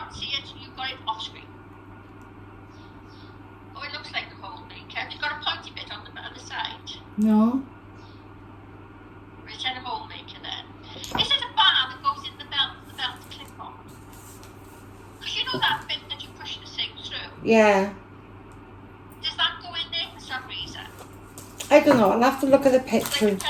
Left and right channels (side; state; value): both; identical; correlation 1.00